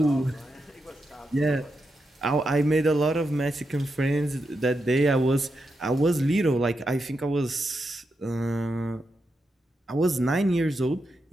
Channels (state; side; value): normal; both; correlation 0.86